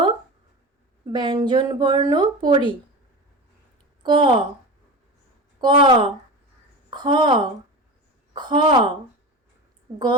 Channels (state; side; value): normal; both; correlation 0.28